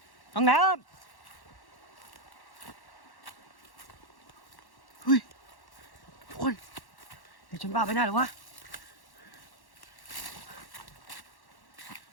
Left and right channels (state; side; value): late; right; 1.1 ms